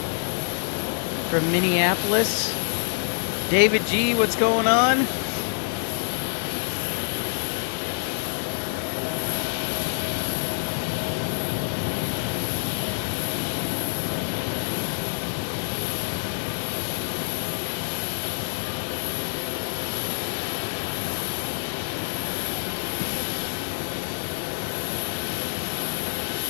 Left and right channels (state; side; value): silent; right; 61 dB below the other